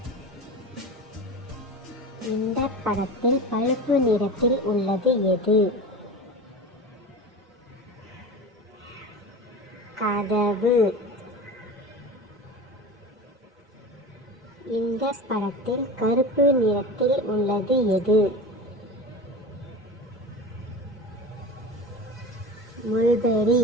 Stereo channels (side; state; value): both; normal; correlation 0.31